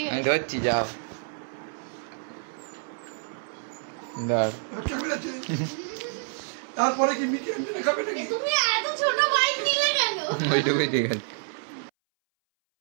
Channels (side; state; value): left; silent; 60 dB below the other